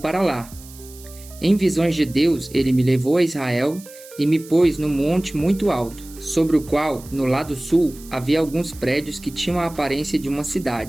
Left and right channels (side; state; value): right; noise; hiss, 20 dB below the sound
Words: lá. Em visões de Deus, ele me levou a Israel e me pôs num monte muito alto, sobre o qual, no lado sul, havia alguns prédios que tinham a aparência de uma